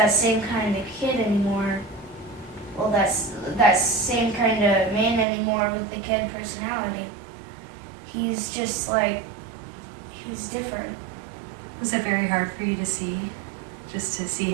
same kind of kid anymore. Well, that same kind of man anymore with the kid personality. He's just like, he's different. Was it very hard for you to see? Just to see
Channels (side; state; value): left; drops out; at 5.2 s